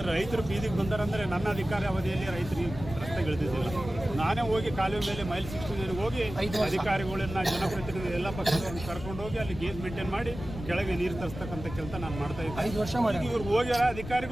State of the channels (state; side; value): noise; left; rumble, 10 dB below the sound